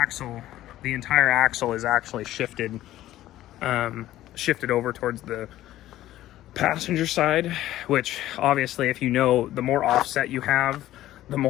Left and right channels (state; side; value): quieter; right; 14.2 dB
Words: entire axle is actually shifted shifted over towards the passenger side, which obviously, if you know, the more offset you have, the